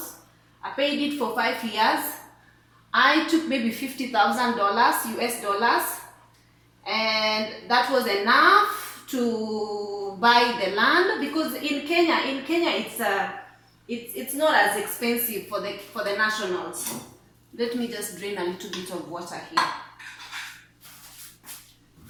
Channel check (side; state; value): both; identical; correlation 1.00